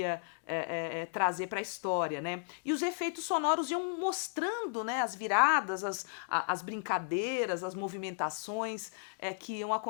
trazer para a história, né. E os efeitos sonoros iam mostrando, né, as viradas, as brincadeiras, as movimentações que iam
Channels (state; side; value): silent; right; digital silence